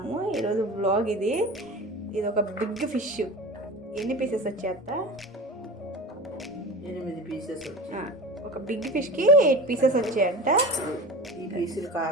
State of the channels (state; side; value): normal; both; correlation 0.32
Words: ఈరోజు వ్లాగ్ ఇది ఒక బిగ్ ఫిష్. ఎన్ని పీసెస్ వచ్చాయత్త? 8 పీసెస్ వచ్చాయి. ఒక బిగ్ ఫిష్కి 8 పీసెస్ వచ్చాయంట. ఈ పీసులు